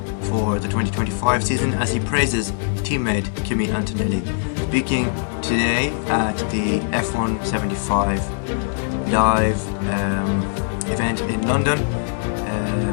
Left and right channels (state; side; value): silent; right; digital silence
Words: for the 2025 season as he praises teammate Kimi Antonelli. Speaking today at the F1 75 live event in London,